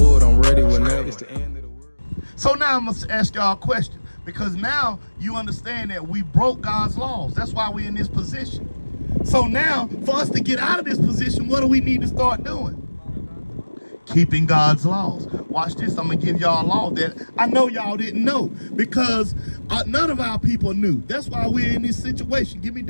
I'm ready whenever. It's the end of the world. So now I'm going to ask y'all a question, because now you understand that we broke God's laws. That's why we're in this position. So now, for us to get out of this position, what do we need to start doing? Keeping God's laws. Watch this. I'm going to give y'all a law that I know y'all didn't know, because none of our people knew. That's why we're in this situation. Give me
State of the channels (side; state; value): both; inverted; correlation -1.00